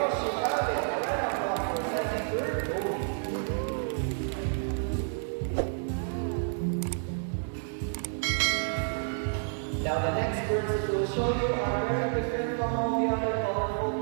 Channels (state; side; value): silent; left; digital silence